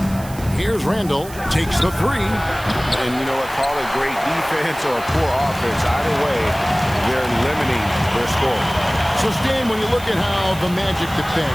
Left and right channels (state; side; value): noise; right; hiss, 17 dB below the sound